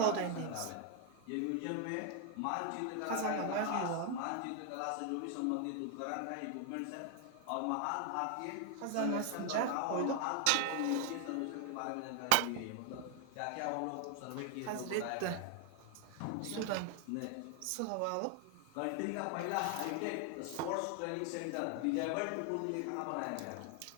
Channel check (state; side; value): different; both; correlation 0.00